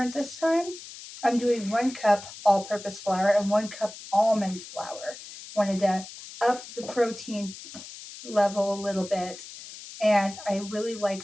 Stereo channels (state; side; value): noise; left; hiss, 14 dB below the sound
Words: this time. I'm doing 1 cup all-purpose flour and 1 cup almond flour. Wanted to up the protein level a little bit, and I really like